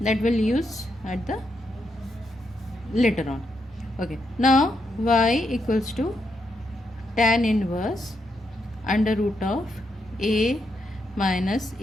That will use at the later on. Okay, now y equals to tan inverse under root of a minus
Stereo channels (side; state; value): both; normal; correlation 0.81